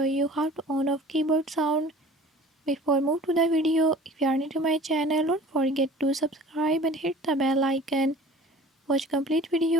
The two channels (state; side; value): normal; both; correlation 0.45